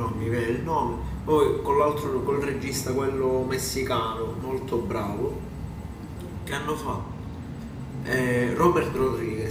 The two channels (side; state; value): both; identical; correlation 1.00